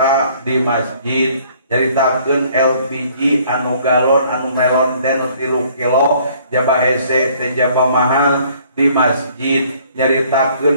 di masjid, nyaritakeun LPG anu galon anu melon teh 3 kilo, jaba hese teh jaba mahal di masjid,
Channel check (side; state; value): both; inverted; correlation -0.59